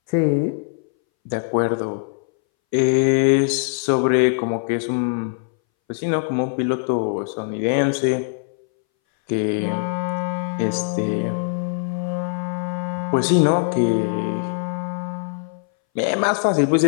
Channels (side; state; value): right; silent; 62 dB below the other